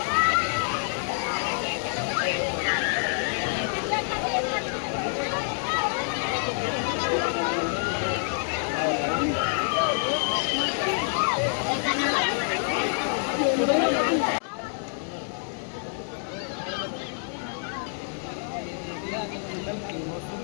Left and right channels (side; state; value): right; silent; 60 dB below the other